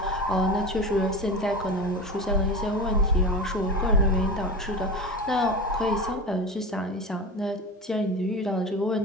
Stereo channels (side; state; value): both; normal; correlation 0.28